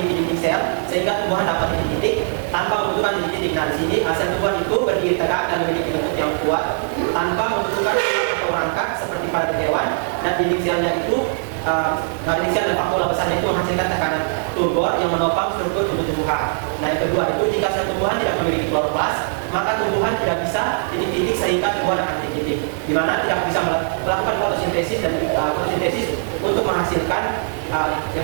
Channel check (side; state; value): left; silent; digital silence